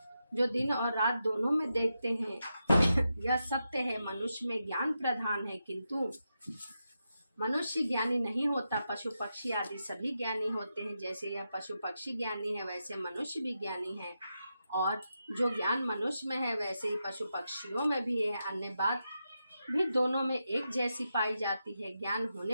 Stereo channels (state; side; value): inverted; both; correlation -0.87